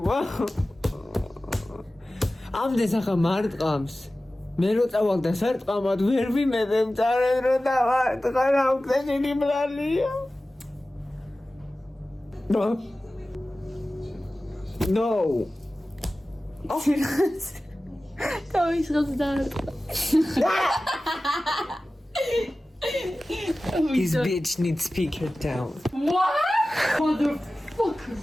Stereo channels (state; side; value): normal; both; correlation 0.96